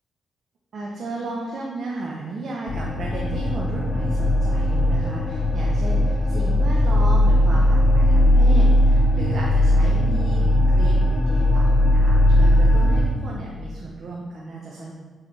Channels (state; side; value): normal; both; correlation 0.78